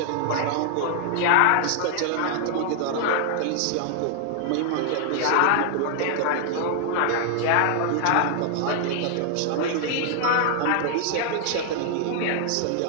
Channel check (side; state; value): both; different; correlation 0.00